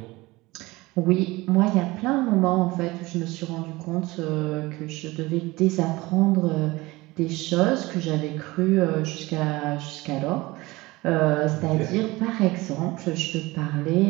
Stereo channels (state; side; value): quieter; left; 21.1 dB